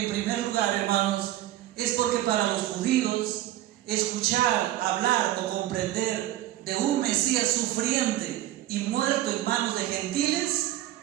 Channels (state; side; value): quieter; left; 14.3 dB